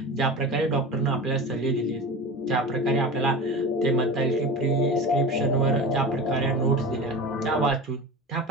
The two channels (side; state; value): both; normal; correlation 0.30